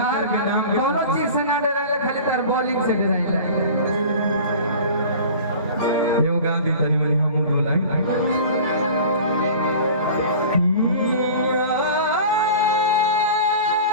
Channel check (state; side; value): inverted; both; correlation -0.40